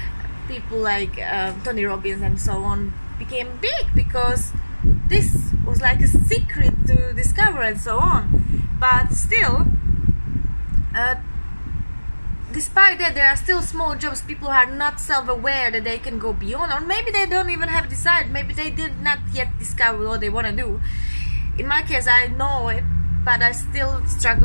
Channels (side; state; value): both; inverted; correlation -1.00